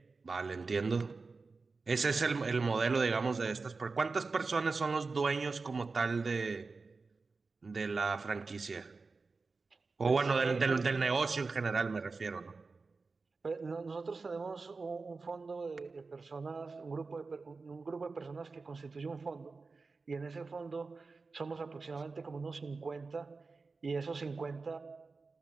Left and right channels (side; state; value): left; quieter; 4.1 dB